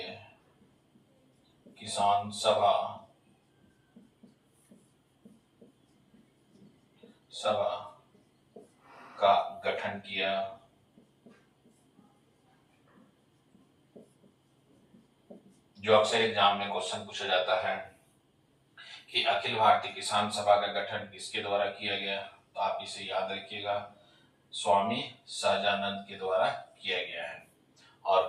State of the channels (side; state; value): both; identical; correlation 1.00